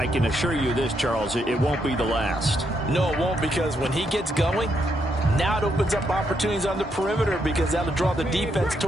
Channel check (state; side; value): normal; both; correlation 0.78